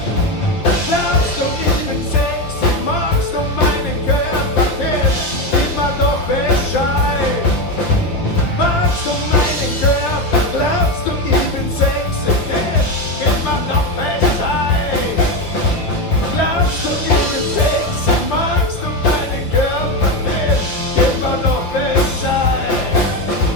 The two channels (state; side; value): late; right; 5.8 ms